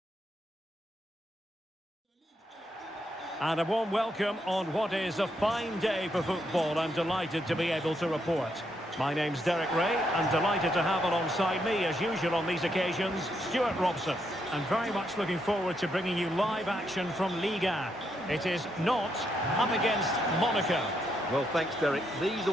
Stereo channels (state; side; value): normal; both; correlation 0.78